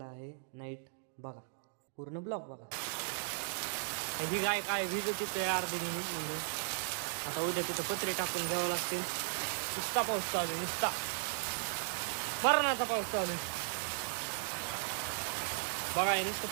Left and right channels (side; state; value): left; silent; digital silence